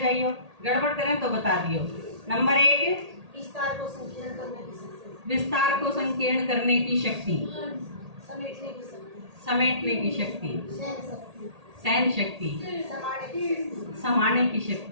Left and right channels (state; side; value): late; left; 1.8 ms